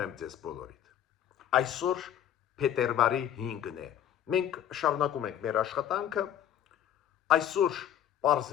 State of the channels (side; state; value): right; quieter; 10.4 dB